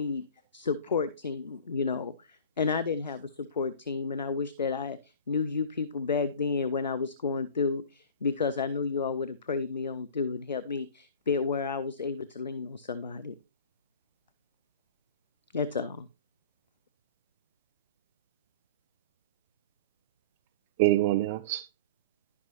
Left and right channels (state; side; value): inverted; both; correlation -0.37